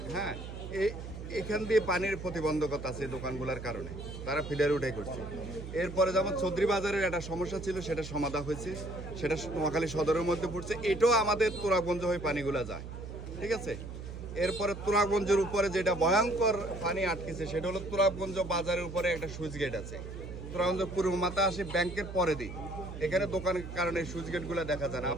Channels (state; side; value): noise; right; hum, 10 dB below the sound